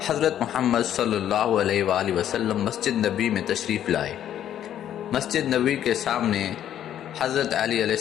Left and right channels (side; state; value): right; quieter; 10.8 dB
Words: حضرت محمد صلی اللہ علیہ وآلہ وسلم مسجد نبی میں تشریف لائے۔ مسجد نبی کے سامنے حضرت علی علیہ